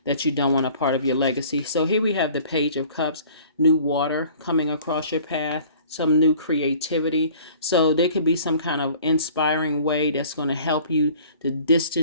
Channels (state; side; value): inverted; both; correlation -0.50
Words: that you don't want a part of your legacy. So here we have the Page of Cups, new water coming across your path, some new creativity. So there could be some kind of inspiring way that's going to help you to